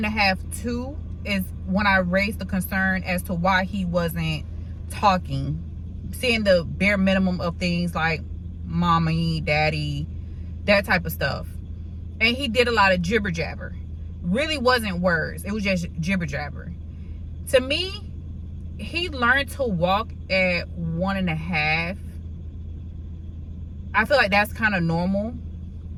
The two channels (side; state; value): both; identical; correlation 1.00